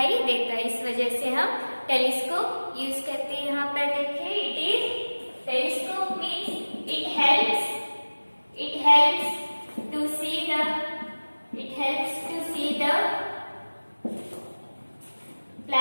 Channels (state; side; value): inverted; both; correlation -1.00